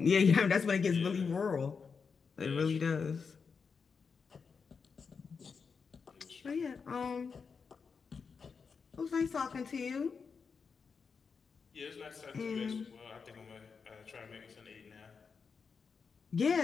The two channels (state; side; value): quieter; right; 5.5 dB